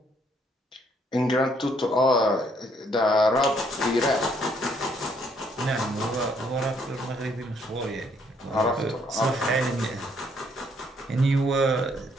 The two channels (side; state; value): both; normal; correlation 0.68